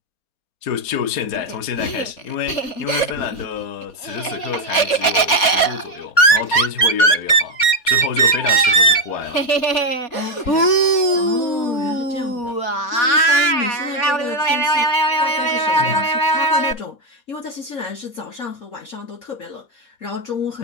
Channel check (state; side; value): late; right; 4.2 ms